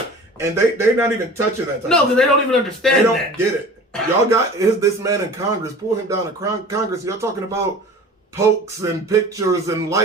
And they're not even touching that type of stuff. No, because they don't even understand that. They don't get it. Y'all got this man in Congress, pull him down to Congress. Y'all talking about pokes and pictures and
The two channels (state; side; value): normal; both; correlation 0.41